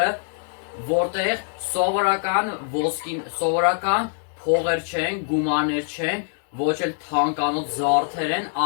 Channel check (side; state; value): right; silent; digital silence